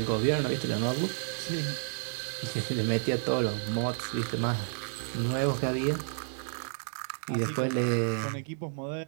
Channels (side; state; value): left; silent; 57 dB below the other